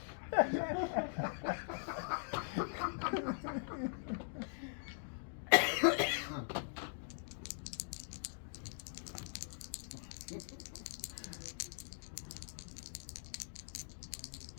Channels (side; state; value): right; silent; digital silence